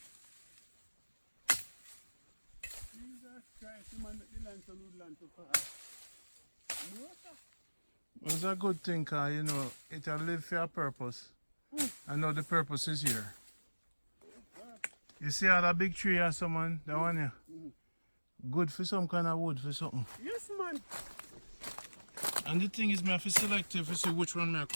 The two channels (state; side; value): inverted; both; correlation -1.00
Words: Jesus Christ, you man make the land to lose land to fast. No, sir. Well, it's a good thing, cause you know, it'll live for a purpose. I know the purpose is here. You see all that big tree or someone, that one here? Good for some kind of wood for something. Yes, man. And the thing is, I have to select if you see which one I